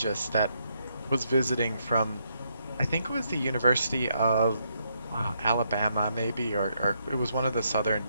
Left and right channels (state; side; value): inverted; both; correlation -0.76